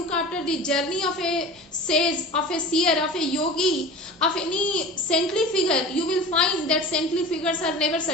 after the journey of a sage, of a seer, of a yogi, of any saintly figure, you will find that saintly figures are never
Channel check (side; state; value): both; normal; correlation 0.36